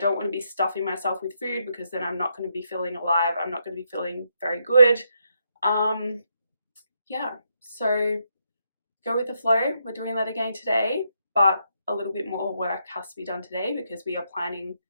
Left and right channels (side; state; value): both; inverted; correlation -0.79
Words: want to be stuffing myself with food, because then I'm not going to be feeling alive. I'm not going to be feeling very good. Yeah, so go with the flow. We're doing that again today, but a little bit more work has to be done today because we are planning